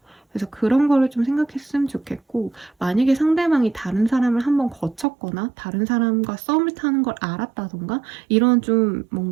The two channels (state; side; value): drops out; left; at 5.1 s